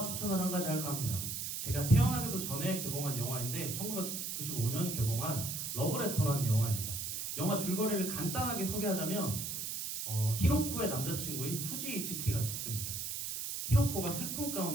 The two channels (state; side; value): noise; right; hiss, 4 dB below the sound